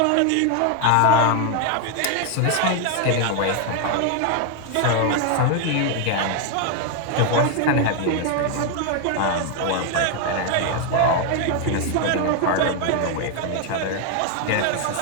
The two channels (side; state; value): both; different; correlation 0.01